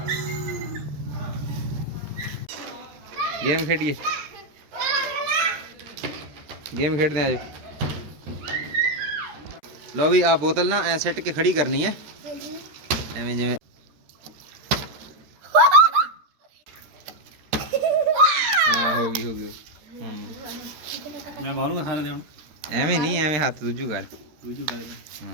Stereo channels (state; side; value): late; left; 13 ms